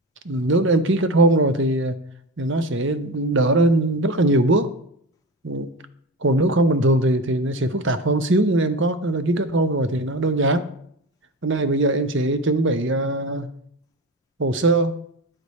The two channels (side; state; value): both; normal; correlation 0.27